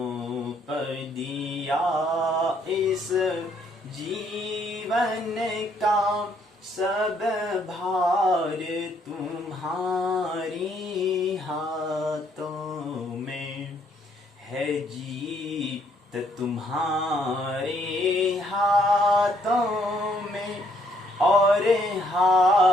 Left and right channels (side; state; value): both; normal; correlation 0.68